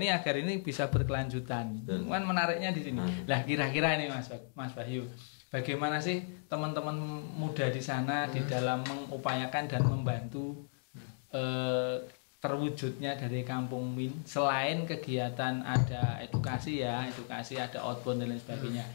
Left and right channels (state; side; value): silent; right; digital silence